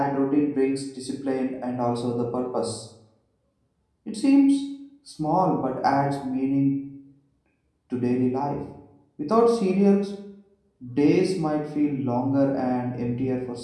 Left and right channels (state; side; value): identical; both; correlation 1.00